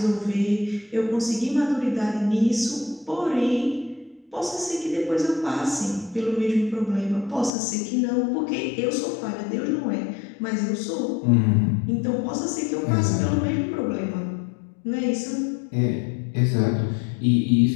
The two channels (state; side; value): drops out; right; at 7.5 s